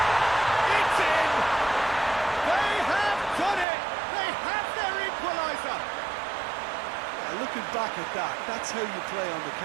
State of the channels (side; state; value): left; drops out; at 3.7 s